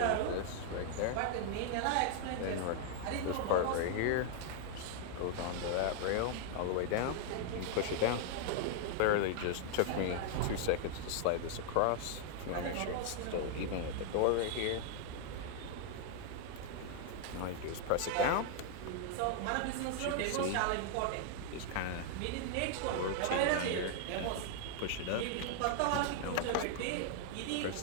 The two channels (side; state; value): both; different; correlation 0.00